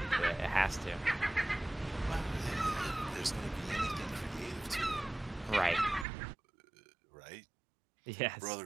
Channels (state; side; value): drops out; left; at 6.1 s